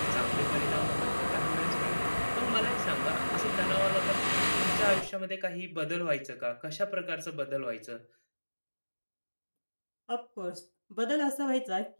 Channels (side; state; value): both; inverted; correlation -1.00